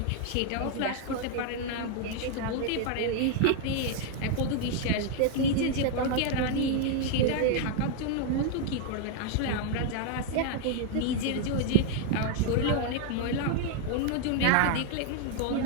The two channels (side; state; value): both; different; correlation 0.00